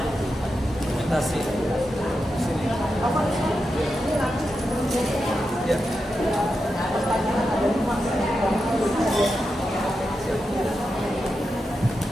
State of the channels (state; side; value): normal; both; correlation 0.88